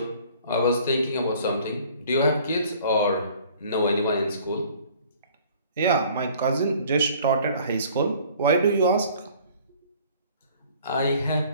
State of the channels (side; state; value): both; inverted; correlation -0.53